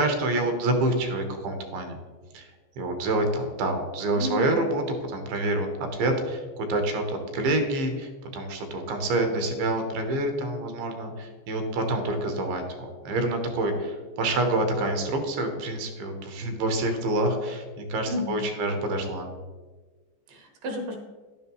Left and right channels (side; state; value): left; late; 14 ms